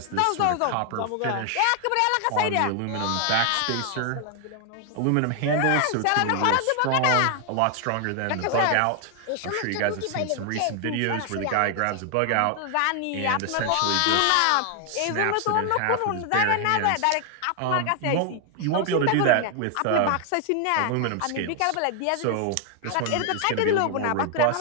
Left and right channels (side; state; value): both; different; correlation 0.00